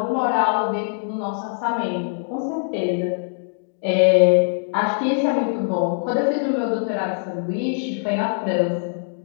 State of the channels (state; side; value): silent; right; digital silence